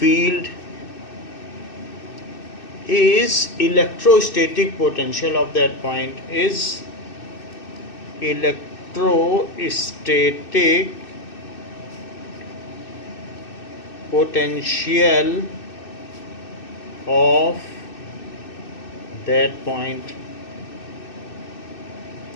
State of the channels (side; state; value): right; late; 2.6 ms